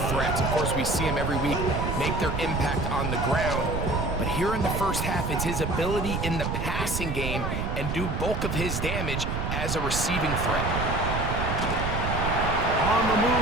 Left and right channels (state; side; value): noise; right; rumble, 2 dB below the sound